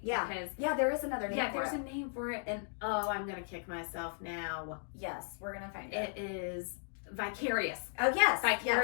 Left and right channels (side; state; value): right; silent; digital silence